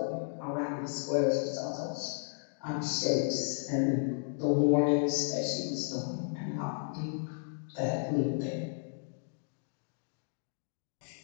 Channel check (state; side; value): silent; right; digital silence